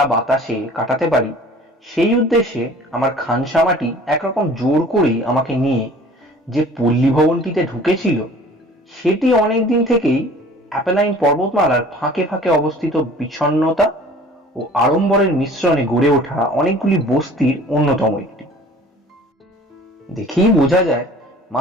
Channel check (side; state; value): both; normal; correlation 0.48